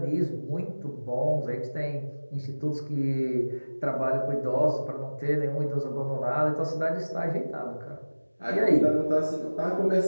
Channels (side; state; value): both; inverted; correlation -1.00